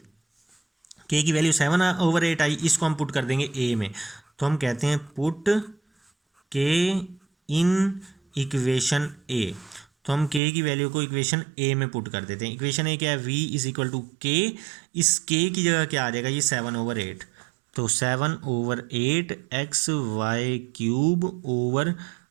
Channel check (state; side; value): drops out; left; at 10.4 s